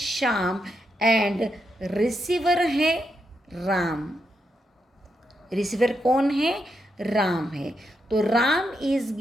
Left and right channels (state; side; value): normal; both; correlation 0.82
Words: एंड रिसीवर है राम. रिसीवर कौन है? राम है. तो Ram is